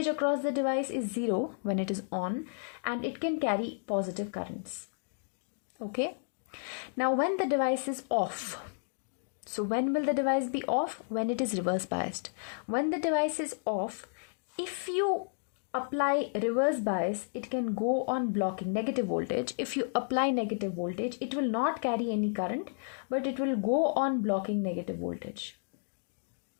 across the device is zero when it is on, and it can carry positive currents. Okay. Now when the device is off, so when will the device be off? When it is reverse biased. When the device is off, if you apply reverse bias, it can go on blocking negative voltage. If you apply negative voltage, it will not carry any current, but it will go on blocking negative voltage.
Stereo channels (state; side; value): silent; right; digital silence